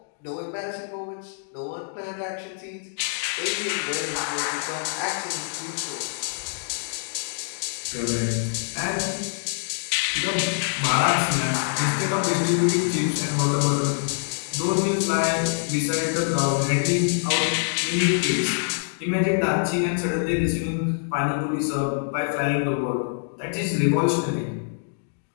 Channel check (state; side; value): silent; right; digital silence